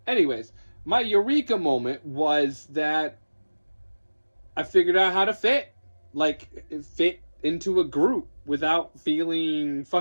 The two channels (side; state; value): both; inverted; correlation -1.00